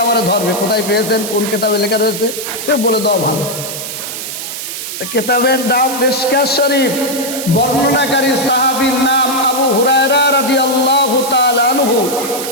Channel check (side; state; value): right; noise; hiss, 7 dB below the sound